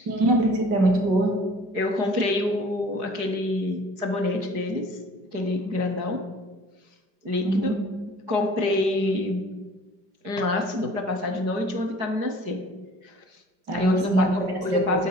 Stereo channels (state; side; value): late; left; 5.0 ms